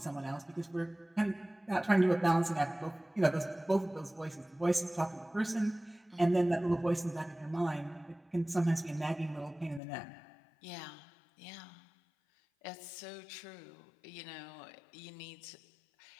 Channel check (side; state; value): right; drops out; at 9.8 s